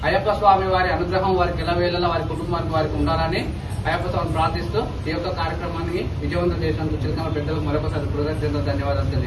అయ్యప్ప స్వామి వారి అనుగ్రహం వారికి ఎల్లవేళలా వారి కుటుంబానికి వారికి ఉండాలని అయ్యప్ప స్వామిని ప్రార్థిస్తూ ఈ యొక్క కార్యక్రమాన్ని విజయవంతం చేసినందుకు చిలకనగర్ పెద్దలకు మరొకసారి కృతజ్ఞతలు ధన్యవాదాలు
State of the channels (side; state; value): both; identical; correlation 1.00